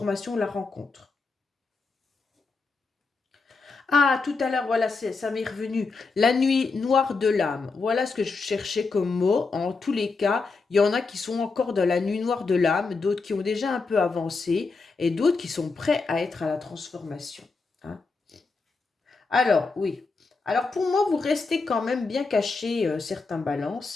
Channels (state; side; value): quieter; right; 4.2 dB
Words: la rencontre. Ah, tout à l'heure, voilà, ça m'est revenu. La nuit noire de l'âme. Voilà ce que je cherchais comme mot. En tous les cas, il y en a qui sont encore dans la nuit noire de l'âme, d'autres qui ont déjà un peu avancé et d'autres qui sont prêts à être à la transformation. Hein. Alors, oui. Alors, pour moi, vous restez quand même bien caché, certains